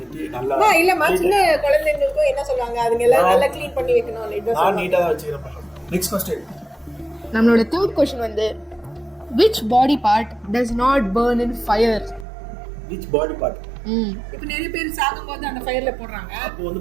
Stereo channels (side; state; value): left; drops out; at 12.2 s